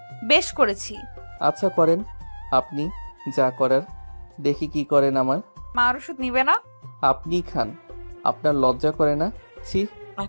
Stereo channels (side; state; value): both; inverted; correlation -1.00